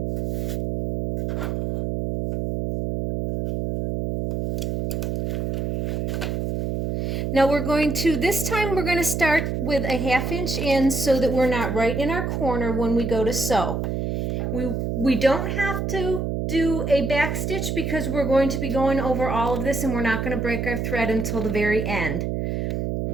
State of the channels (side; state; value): right; noise; hum, 1 dB below the sound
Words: Now this time we're going to start with a 1/2 inch in so that we're not right in our corner when we go to sew. We don't have to do a back stitch because we're going to be going over all of this and we're not going to break our thread until the very end.